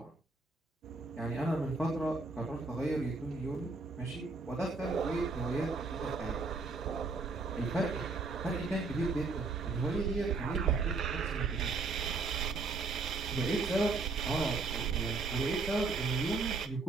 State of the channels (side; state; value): left; quieter; 3.8 dB